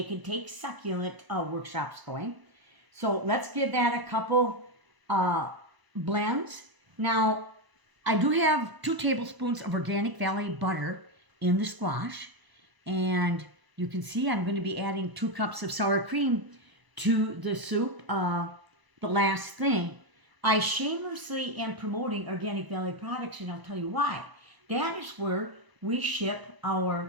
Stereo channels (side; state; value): left; late; 1.0 ms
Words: and take succulent workshops going. So let's give that a couple blends. Now, I do have 2 tablespoons of Organic Valley butter in the squash, and you can see I'm going to be adding 2 cups of sour cream to the soup. The last thing, I shamelessly am promoting Organic Valley products, and I'll tell you why. That is where we ship